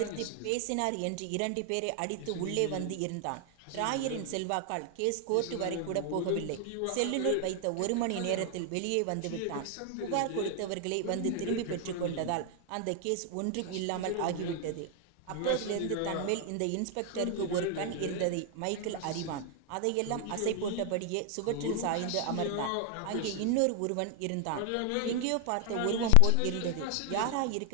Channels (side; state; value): both; different; correlation 0.00